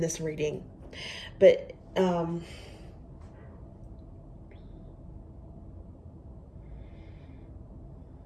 this reading. But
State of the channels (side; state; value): both; identical; correlation 1.00